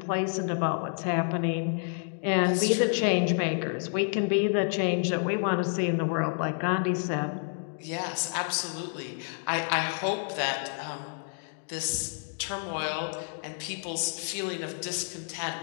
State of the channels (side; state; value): right; silent; 58 dB below the other